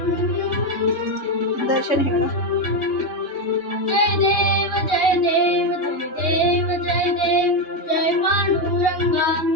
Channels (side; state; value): right; late; 3.2 ms